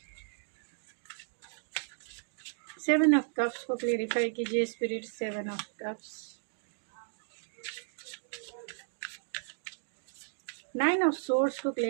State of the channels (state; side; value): silent; left; digital silence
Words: seven of cups को क्लेरिफाई कीजिए spirit. Seven of cups, nine of source को